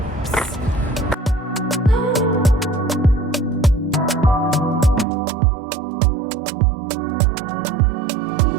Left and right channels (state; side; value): drops out; left; at 5.1 s